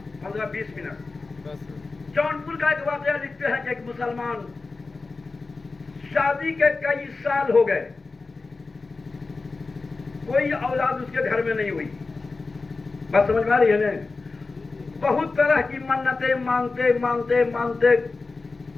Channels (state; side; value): quieter; right; 3.9 dB